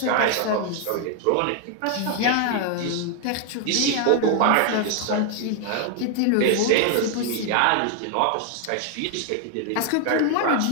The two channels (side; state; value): both; different; correlation 0.00